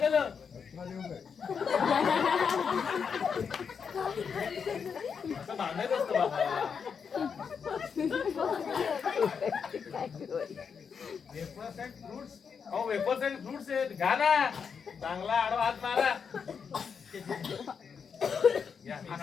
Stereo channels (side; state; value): right; quieter; 6.4 dB